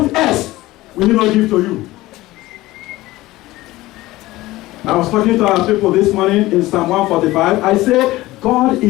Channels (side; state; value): right; quieter; 18.0 dB